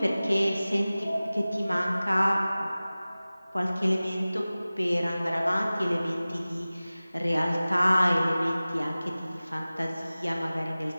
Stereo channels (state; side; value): inverted; both; correlation -0.98